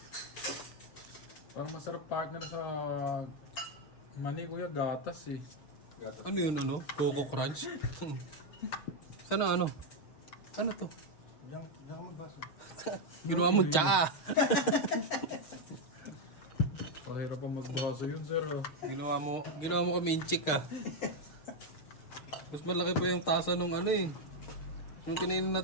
Parang masarap partner sa mani, kuya, gatas eh. Gatas. Ano yun, ano? Coco Crunch? Sana ano? Ano to? Diyan ka magbaso. Ginawa mo tsaa. Pahirap pa magbaso yun, sir. Oh. Ginawa mo kami inchik ah. Mas malaki pa yung tasa nung ano eh. Yung kinainin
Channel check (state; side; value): late; right; 6.5 ms